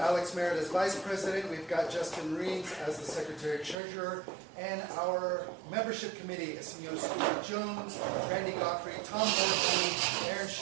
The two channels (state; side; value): drops out; left; at 3.8 s